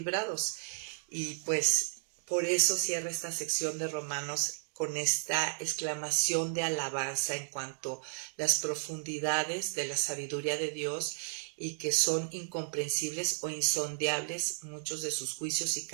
Y pues por eso cierra esta sección de Romanos con esta exclamación de alabanza en cuanto a las profundidades de la sabiduría de Dios y que son incomprensibles o insondeables muchos de sus juicios y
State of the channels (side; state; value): left; silent; digital silence